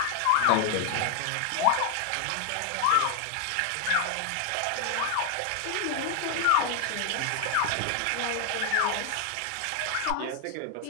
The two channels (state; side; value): different; both; correlation 0.00